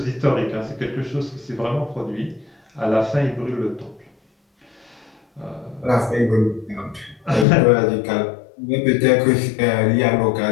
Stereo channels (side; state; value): right; drops out; at 7.5 s